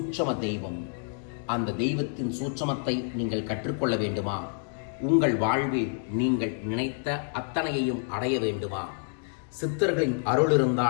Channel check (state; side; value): silent; right; 59 dB below the other